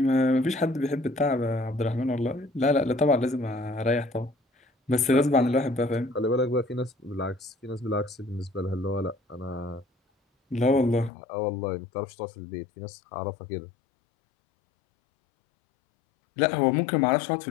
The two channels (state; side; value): drops out; right; at 11.1 s